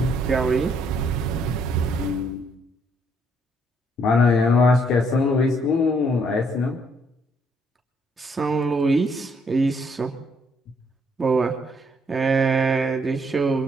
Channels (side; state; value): both; normal; correlation 0.69